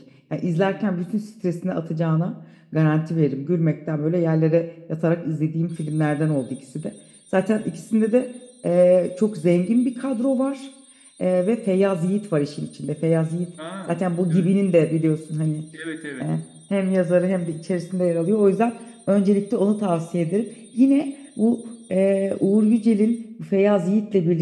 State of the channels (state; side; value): identical; both; correlation 1.00